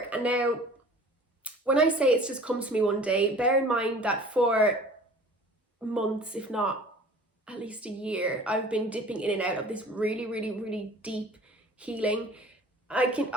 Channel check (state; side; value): normal; both; correlation 0.46